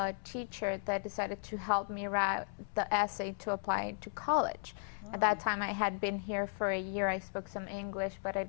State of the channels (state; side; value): silent; right; 54 dB below the other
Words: teacher that decided to help me write the essay to apply to college. At that time, I had been here for a year. I spoke some English, but I